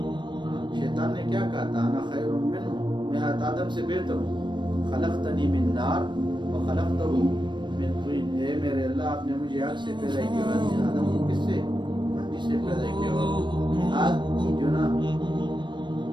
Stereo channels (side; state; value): left; late; 0.22 ms